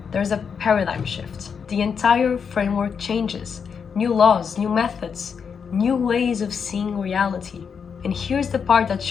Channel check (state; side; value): quieter; right; 6.5 dB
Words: there's a paradigm shift. The entire framework changes. New laws, new methods, new ways of seeing reality. And here's the part that